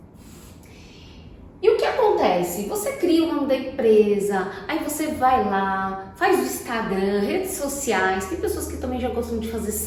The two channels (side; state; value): both; identical; correlation 1.00